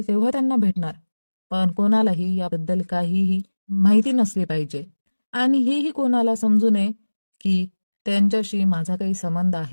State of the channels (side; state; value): both; inverted; correlation -1.00